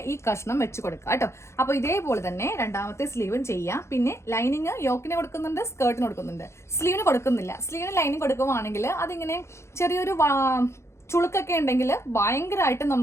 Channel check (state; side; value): late; right; 0.13 ms